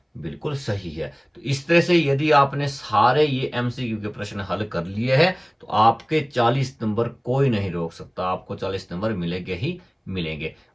बिल्कुल सही है। तो इस तरह से यदि आपने सारे ये एमसीक्यू के प्रश्न हल कर लिए हैं तो आपके 40 नंबर कोई नहीं रोक सकता, आपको 40 नंबर मिलेंगे ही मिलेंगे।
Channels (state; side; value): identical; both; correlation 1.00